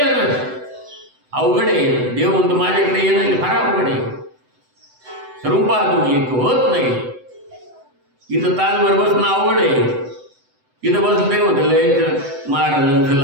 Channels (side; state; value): left; late; 7.9 ms